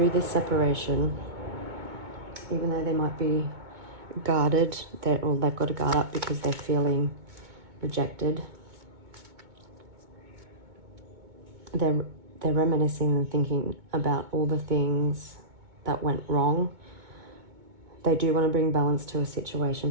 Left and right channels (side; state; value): left; late; 2.2 ms